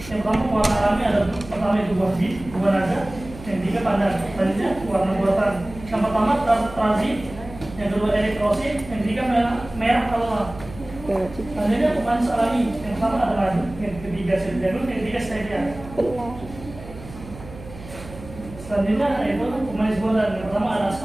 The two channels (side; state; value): right; noise; hum, 15 dB below the sound